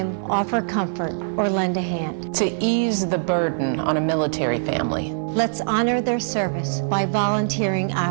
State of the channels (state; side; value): silent; left; 59 dB below the other